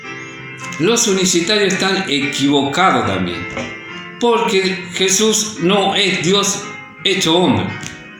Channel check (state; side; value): identical; both; correlation 1.00